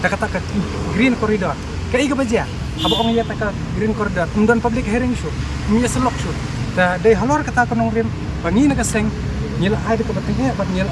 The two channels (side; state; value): both; identical; correlation 1.00